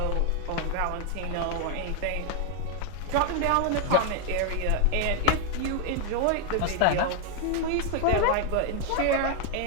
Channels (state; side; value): different; both; correlation 0.00